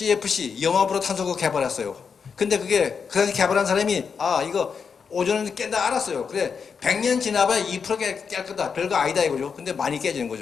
염화불호 탄소를 개발했어요. 근데 그게 그 당시 개발한 사람이 이거 오존은 깬다 알았어요. 그래 100년 지나봐야 2% 깰 거다. 별거 아니다 이거죠. 근데 많이 깨지는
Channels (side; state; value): right; quieter; 6.0 dB